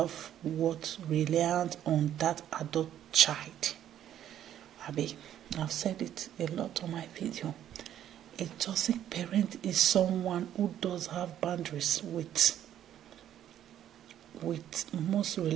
reliant on that adult child. I've said it a lot on my video. A toxic parent is someone who does have boundaries with most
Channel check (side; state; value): left; quieter; 11.0 dB